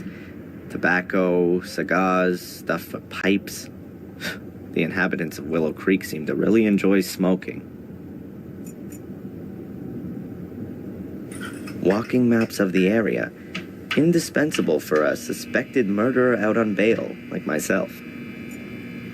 Tobacco, cigars, stuff for pipes. The inhabitants of Willow Creek seem to really enjoy smoking. Walking maps of the area. Indispensable for a suspected murderer out on bail, like myself.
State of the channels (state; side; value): identical; both; correlation 1.00